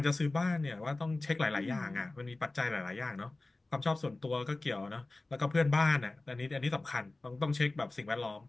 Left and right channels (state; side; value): quieter; right; 3.1 dB